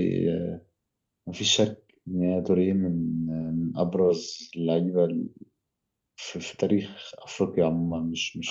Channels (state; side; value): identical; both; correlation 1.00